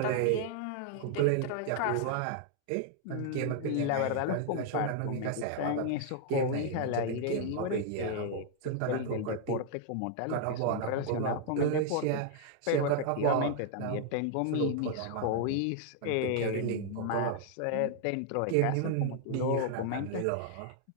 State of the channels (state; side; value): different; both; correlation 0.00